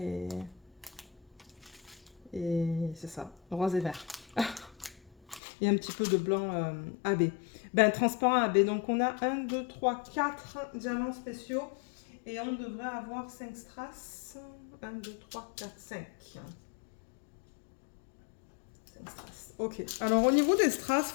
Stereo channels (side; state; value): right; drops out; at 5.4 s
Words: c'est ça, rose et vert. et un petit peu de blanc AB. Ben, transparent AB. Donc on a 1, 2, 3, 4 diamants spéciaux et on devrait avoir 5 strass. 1, 2, 3, 4, 5. 5 strass. Ok. Alors au niveau des strass,